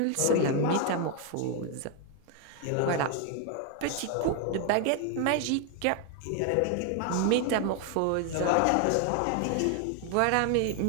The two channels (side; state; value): both; different; correlation 0.01